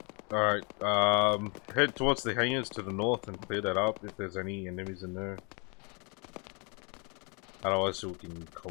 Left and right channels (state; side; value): quieter; right; 33.2 dB